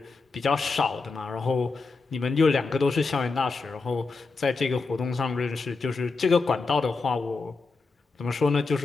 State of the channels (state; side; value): quieter; right; 4.1 dB